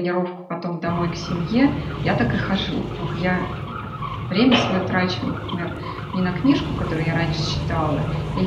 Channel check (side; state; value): both; identical; correlation 1.00